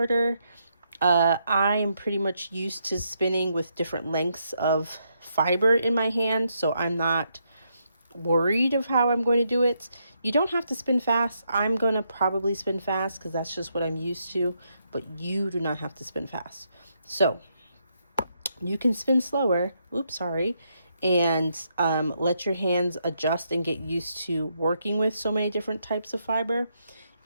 I am pretty much used to spinning with different lengths of fiber in my hand, so I'm not worried of how I'm going to do it. You don't have to spin fast. I'm going to probably spin fast because that's just what I'm used to, but you do not have to spin fast. So you can spin slower, and let your hands adjust and get used to working with so many different types of fiber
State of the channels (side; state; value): both; inverted; correlation -0.78